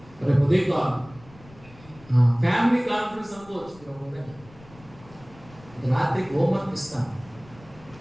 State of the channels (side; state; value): left; noise; rumble, 23 dB below the sound